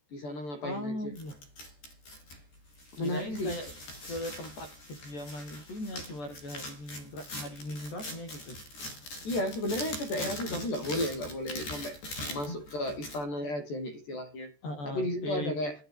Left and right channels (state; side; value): late; right; 14 ms